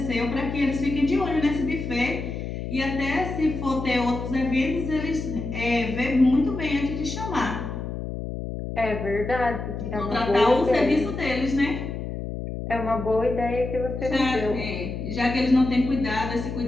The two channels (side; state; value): left; noise; hum, 6 dB below the sound